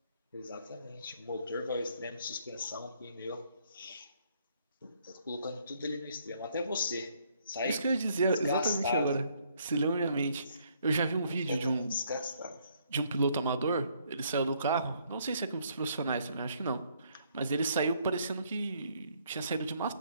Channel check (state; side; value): inverted; both; correlation -0.68